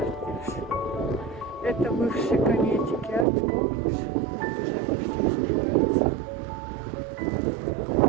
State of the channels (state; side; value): drops out; left; at 3.2 s